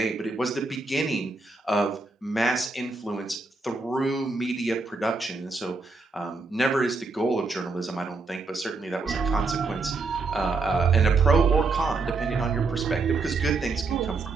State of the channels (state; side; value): quieter; left; 3.9 dB